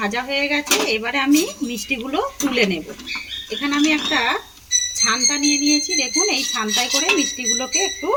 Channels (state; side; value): identical; both; correlation 1.00